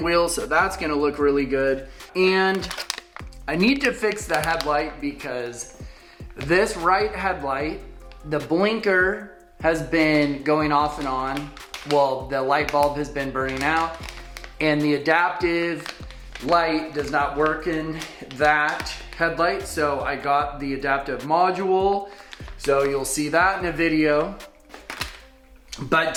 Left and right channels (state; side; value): identical; both; correlation 1.00